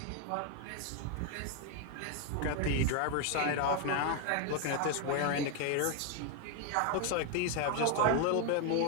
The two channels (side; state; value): both; different; correlation 0.01